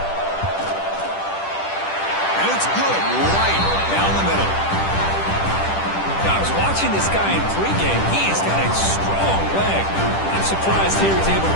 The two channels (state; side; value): late; right; 10 ms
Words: And it's good right down the middle. Now, I was watching this guy in pregame. He has got a strong leg. I'm surprised here he's able